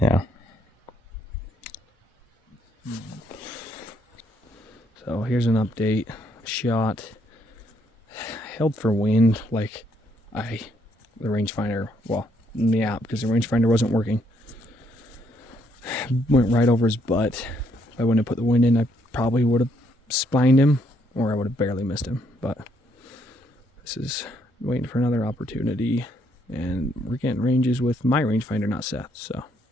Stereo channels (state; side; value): normal; both; correlation 0.72